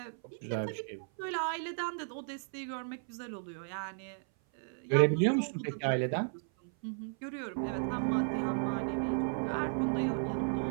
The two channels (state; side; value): silent; left; 55 dB below the other